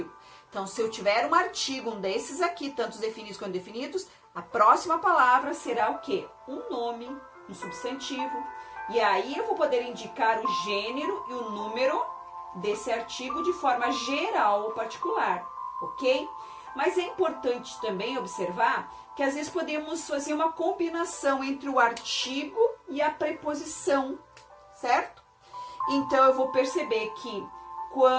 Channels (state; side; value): identical; both; correlation 1.00